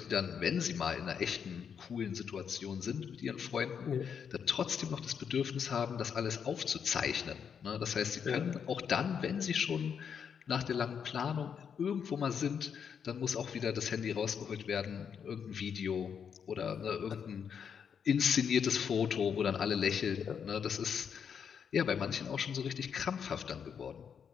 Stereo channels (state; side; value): quieter; right; 7.2 dB